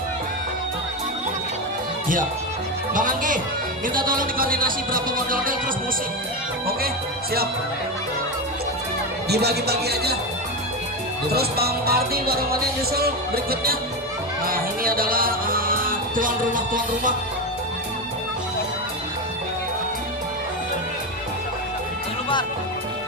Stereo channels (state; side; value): normal; both; correlation 0.15